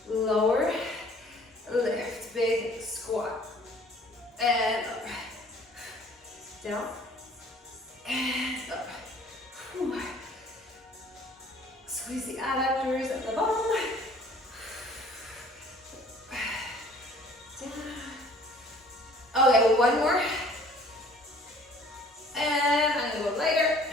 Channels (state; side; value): normal; both; correlation 0.53